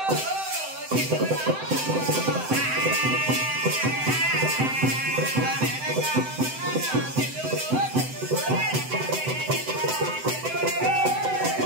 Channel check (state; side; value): late; left; 7.8 ms